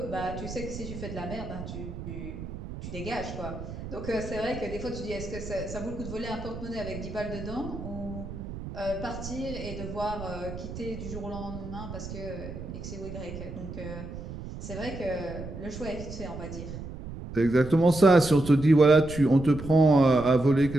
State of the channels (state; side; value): noise; right; rumble, 10 dB below the sound